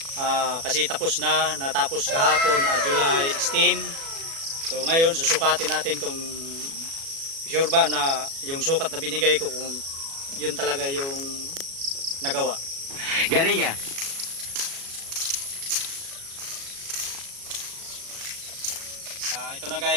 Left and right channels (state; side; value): late; left; 36 ms